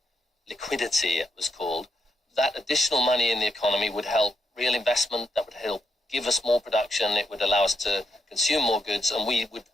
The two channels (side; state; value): both; normal; correlation 0.80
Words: liquidity it was called, that additional money in the economy would help real investment, that would help give us more production, it would allow us to consume more goods, and we would